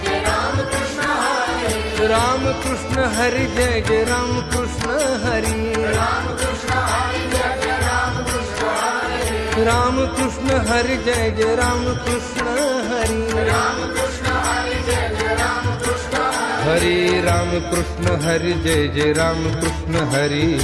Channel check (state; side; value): identical; both; correlation 1.00